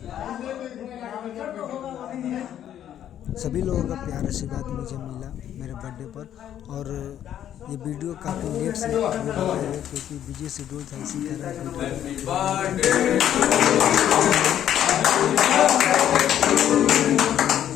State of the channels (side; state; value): right; quieter; 10.7 dB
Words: सभी लोगों का प्यार आशीर्वाद मुझे मिला मेरे बर्थडे पर। और ये वीडियो काफ़ी लेट से बनाया क्योंकि बिजी शेड्यूल था, इसी तरह